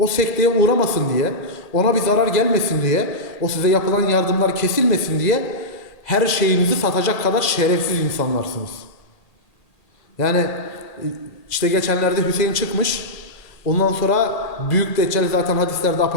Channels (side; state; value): right; late; 1.8 ms